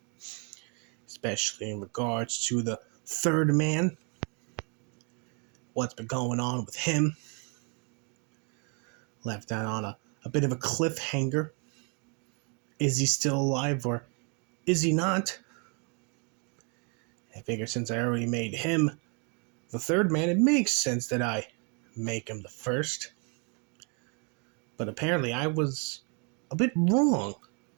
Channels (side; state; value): left; quieter; 35.7 dB